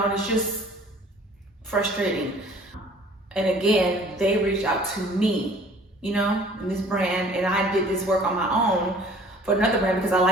and it's just frustrating. And again, they reached out to me, you know, in this brand, and I did this work on my own for another brand because I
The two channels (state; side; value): normal; both; correlation 0.51